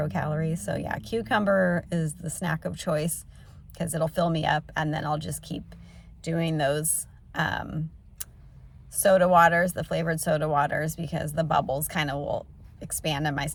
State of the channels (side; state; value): both; identical; correlation 1.00